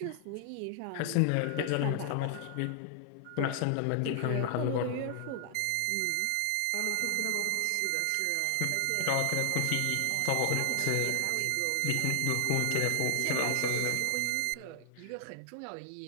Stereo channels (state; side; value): different; both; correlation 0.00